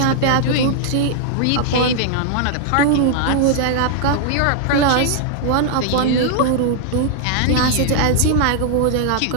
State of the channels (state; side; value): different; both; correlation 0.00